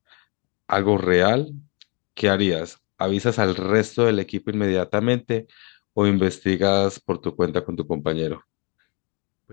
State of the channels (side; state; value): right; quieter; 31.9 dB